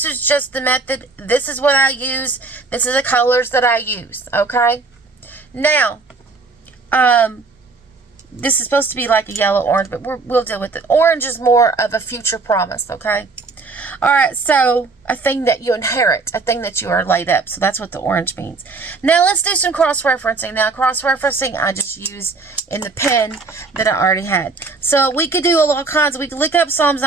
is just the method. This is what I use. This is the colors that I use. Okay, now, this is supposed to be like a yellow orange, but we'll deal with it. Orange is more of a future promise. Okay. All right, so a thing that you inherit, a thing that you are laid up. So that's what the orange means. Now let's do some cross-referencing. Now cross-referencing I just use in the pen that I already had. So we could do all kinds. We could look up Psalms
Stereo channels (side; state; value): left; quieter; 3.9 dB